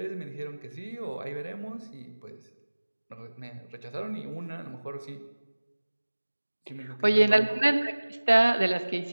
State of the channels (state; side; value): inverted; both; correlation -1.00